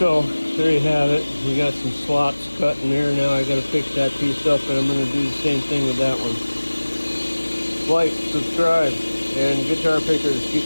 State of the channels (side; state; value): both; inverted; correlation -1.00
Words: So there you have it. We got some slots cut in there. Now I got to fix that piece up, and I'm going to do the same thing with that one. Like, subscribe, and guitar pickers,